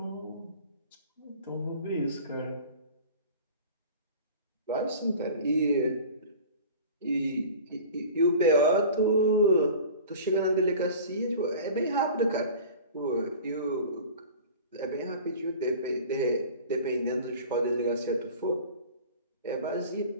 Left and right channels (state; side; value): inverted; both; correlation -0.41